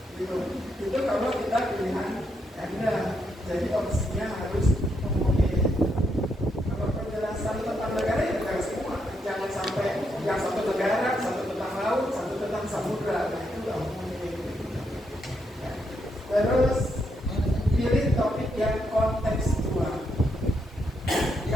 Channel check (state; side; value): normal; both; correlation 0.79